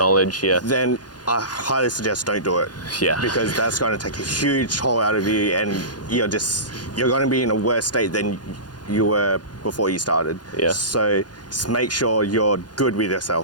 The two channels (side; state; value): right; late; 0.69 ms